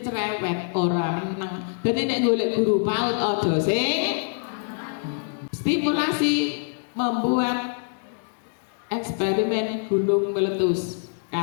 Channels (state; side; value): silent; right; 62 dB below the other